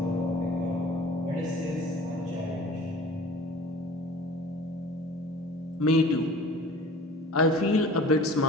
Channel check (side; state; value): both; normal; correlation 0.44